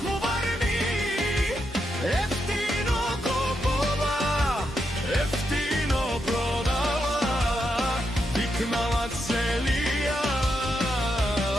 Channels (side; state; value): both; normal; correlation 0.83